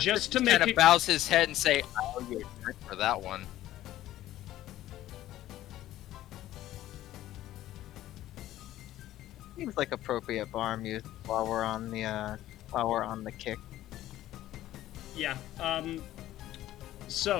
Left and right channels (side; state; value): right; quieter; 14.1 dB